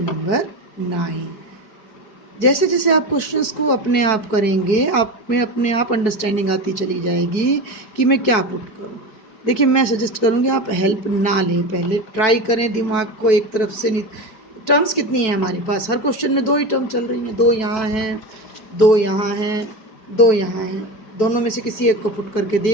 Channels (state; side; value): late; right; 5.0 ms